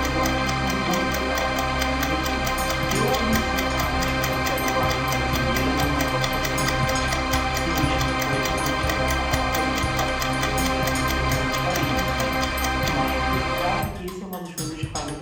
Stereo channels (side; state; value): both; identical; correlation 1.00